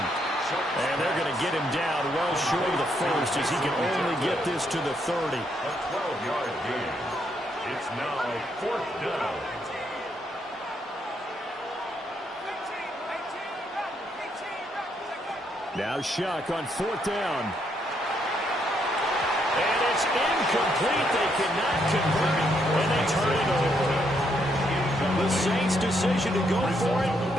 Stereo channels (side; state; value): both; normal; correlation 0.75